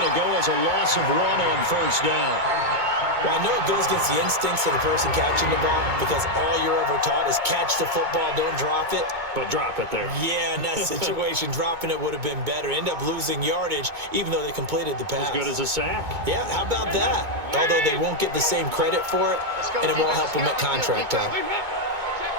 to go as a loss of 1 on first down. Well, I know it goes against the instincts of the person catching the ball because all you're ever taught is catch the football, don't drop it. But drop it there. Yeah, in that situation, dropping it would have been better. End up losing yardage, even though they completed the pass. As good as a sack. Yeah, how about that? Although they won't get the same credit for it, and it won't help them at contract time.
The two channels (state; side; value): late; left; 2.2 ms